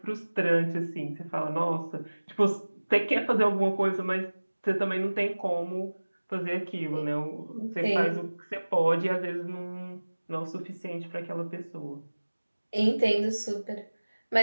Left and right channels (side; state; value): both; inverted; correlation -1.00